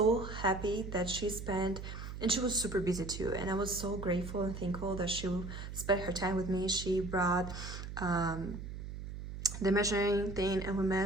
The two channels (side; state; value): right; noise; hum, 8 dB below the sound